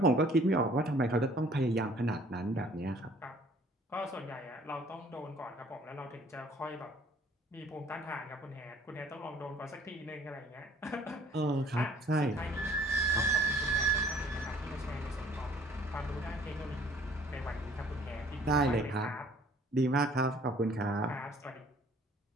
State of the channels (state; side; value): normal; both; correlation 0.55